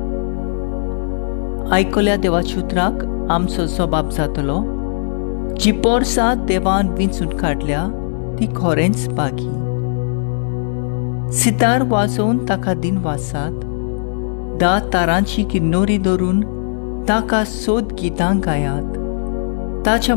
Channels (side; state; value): right; silent; digital silence